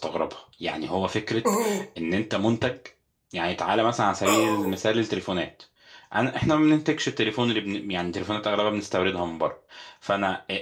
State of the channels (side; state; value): both; identical; correlation 1.00